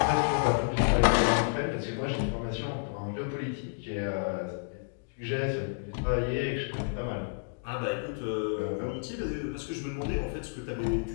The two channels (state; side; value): silent; right; digital silence